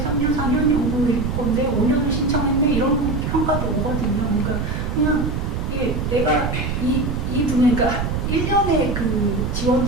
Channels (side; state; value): right; noise; rumble, 2 dB below the sound